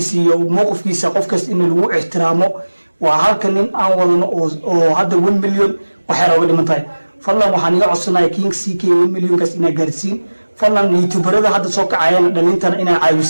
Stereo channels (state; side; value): inverted; both; correlation -1.00